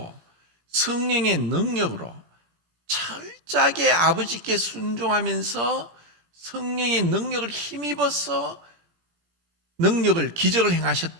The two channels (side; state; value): left; late; 17 ms